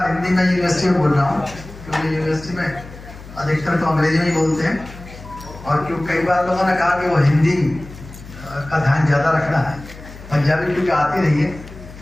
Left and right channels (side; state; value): left; noise; hum, 16 dB below the sound